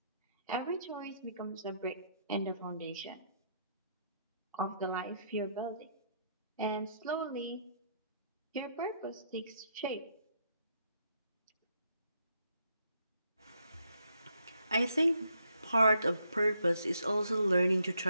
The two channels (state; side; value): inverted; both; correlation -0.74